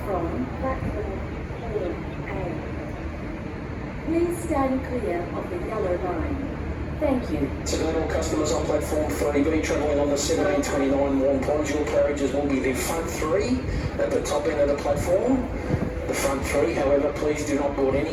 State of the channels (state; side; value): identical; both; correlation 1.00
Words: platform A. Please stand clear of the yellow line. Thank you. Tonight, all customers on platform 3B travelling on the 1729 Warm Ponds, your carriages will be the front three at the top end of the platform. The front three, however, please do not board